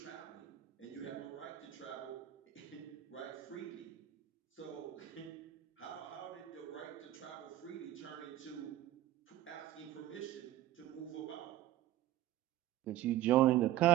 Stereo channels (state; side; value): quieter; left; 13.9 dB